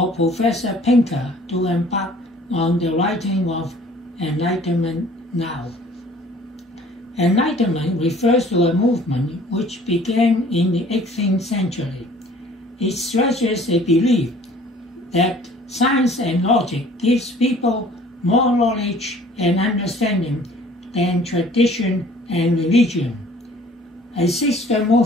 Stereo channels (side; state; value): both; normal; correlation 0.53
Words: Professor Pinker to embark on the writing of Enlightenment Now. Enlightenment refers to a movement which began in the 18th century. It stresses a belief that science and logic gives people more knowledge and understanding than tradition and religion. A sister